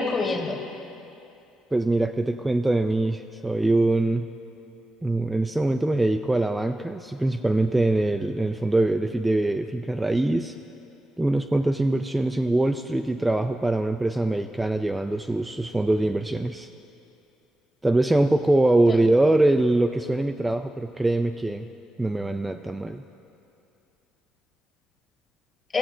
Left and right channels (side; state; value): both; normal; correlation 0.95